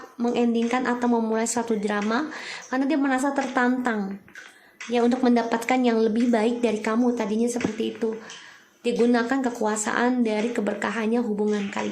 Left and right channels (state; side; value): identical; both; correlation 1.00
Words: mengendingkan atau memulai suatu drama karena dia merasa tertantang ya untuk mendapatkan yang lebih baik dari kamu. Tadinya seperti itu. Digunakan kekuasaan dari keberkahannya hubungan